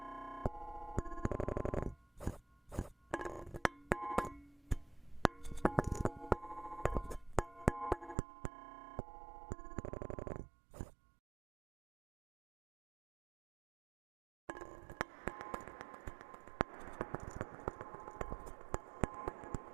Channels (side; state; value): left; drops out; at 8.2 s